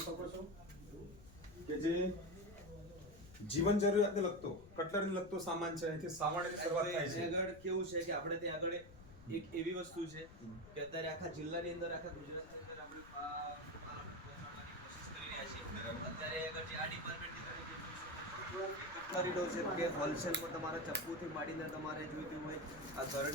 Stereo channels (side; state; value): left; noise; rumble, 18 dB below the sound